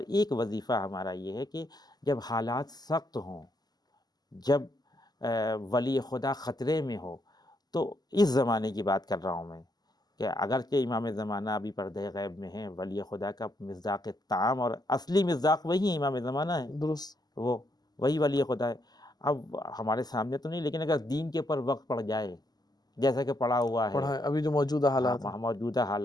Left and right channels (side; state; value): right; late; 0.20 ms